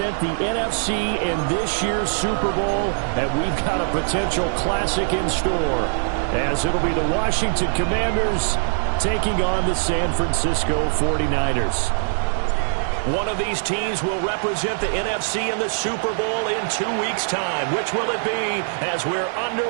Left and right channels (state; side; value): silent; left; digital silence